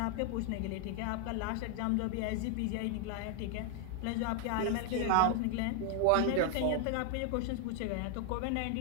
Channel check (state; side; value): different; both; correlation 0.00